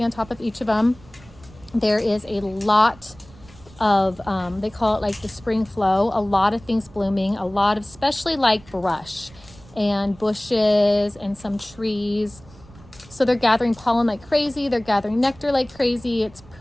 on top of each of them. There is a lot of, they call it like the spring flow, a lot of things blooming, a lot of, especially like brush and bushes and some trees. So they're gathering pollen like crazy. They're gathering nectar like crazy. It's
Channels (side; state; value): right; noise; rumble, 23 dB below the sound